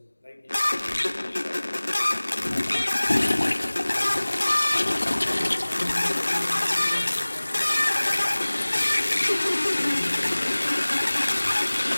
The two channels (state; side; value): inverted; both; correlation -1.00